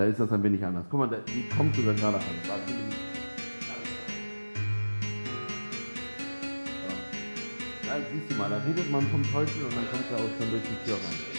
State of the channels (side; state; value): both; inverted; correlation -1.00